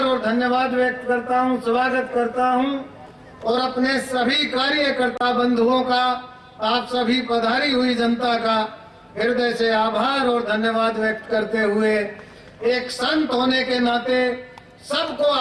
और धन्यवाद व्यक्त करता हूँ, स्वागत करता हूँ। और अपने सभी कार्यकर्ता बंधुओं का, आप सभी पधारी हुई जनता का हृदय से आभार और धन्यवाद व्यक्त करते हुए एक संत होने के नाते सबको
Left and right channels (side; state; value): both; identical; correlation 1.00